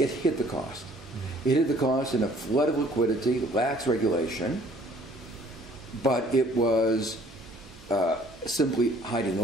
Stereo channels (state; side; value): noise; right; hum, 24 dB below the sound